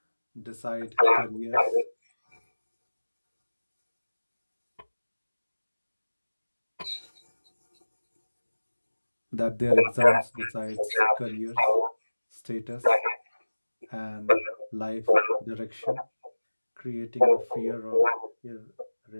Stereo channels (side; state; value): both; inverted; correlation -1.00